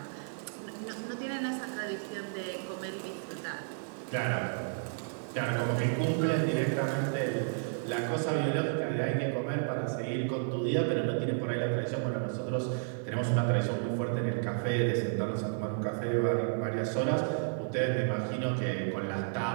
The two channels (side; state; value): left; silent; 56 dB below the other